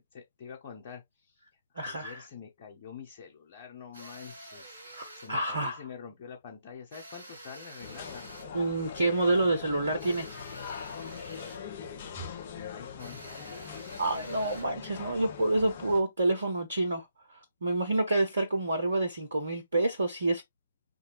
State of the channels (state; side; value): inverted; both; correlation -0.81